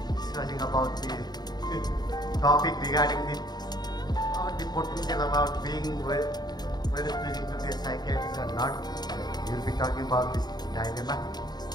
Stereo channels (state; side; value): late; right; 0.20 ms